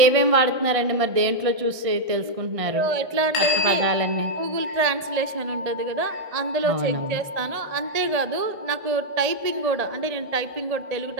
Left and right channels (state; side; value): late; left; 1.7 ms